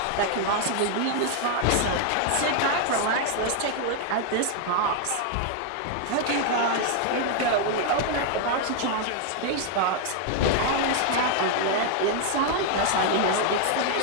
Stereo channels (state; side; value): different; both; correlation 0.00